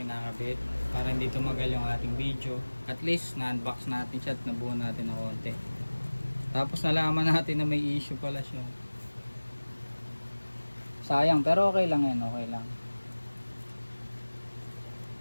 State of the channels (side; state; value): both; inverted; correlation -1.00